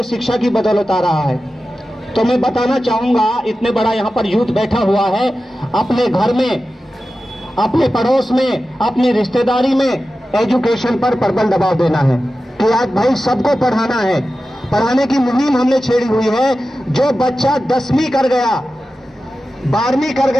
शिक्षा की बदौलत आ रहा है। तो मैं बताना चाहूंगा, इतने बड़ा यहाँ पर यूथ बैठा हुआ है, अपने घर में, अपने पड़ोस में, अपनी रिश्तेदारी में एजुकेशन पर प्रबल दबाव देना है कि आज भाई सबको पढ़ाना है। पढ़ाने की मुहिम हमने छेड़ी हुई है। जो बच्चा 10वीं कर गया, 12वीं कर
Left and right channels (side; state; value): both; normal; correlation 0.93